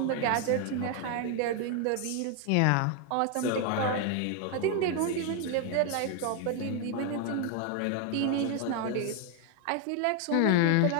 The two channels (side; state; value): both; different; correlation 0.01